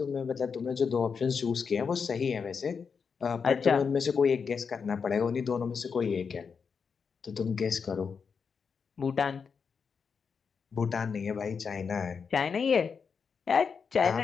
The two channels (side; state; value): right; quieter; 5.9 dB